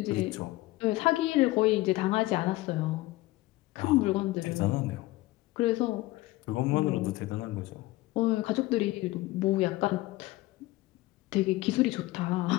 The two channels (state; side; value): quieter; right; 18.8 dB